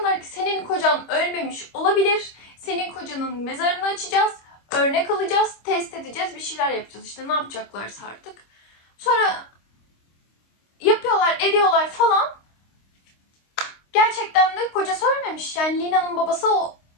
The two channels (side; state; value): right; late; 26 ms